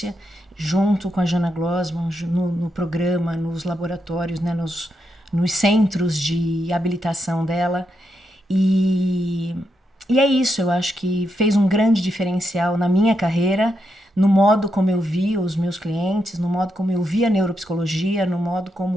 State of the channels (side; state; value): both; normal; correlation 0.83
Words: junto com a Jana Glossman, no programa, nos laboratórios, né, nos centros de habilitação dela. E é isso, eu acho que fez um grande diferencial na minha carreira, no modo como eu vi os meus clientes, no modo como eu vi a neuropsicologia, no modo